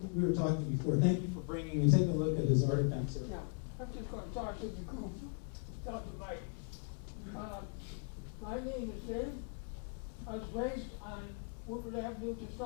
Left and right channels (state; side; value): quieter; right; 37.3 dB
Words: we were talking before. Thank you for bringing and take a look at his artifacts here. Yeah, I'm just going to talk to the group without the mic. My name is Dave. I was raised on Woodward Avenue, just